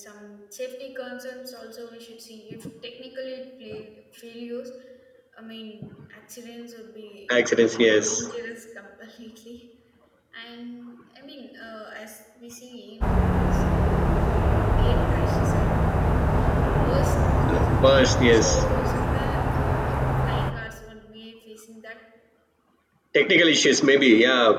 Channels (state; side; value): identical; both; correlation 1.00